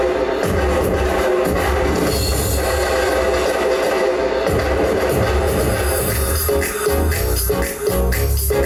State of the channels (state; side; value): identical; both; correlation 1.00